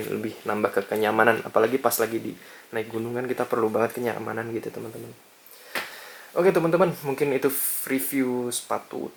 lebih nambah ke kenyamanan. Apalagi pas lagi di naik gunung kan kita perlu banget kenyamanan gitu teman-teman. Oke teman-teman, mungkin itu review sepatu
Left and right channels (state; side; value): identical; both; correlation 1.00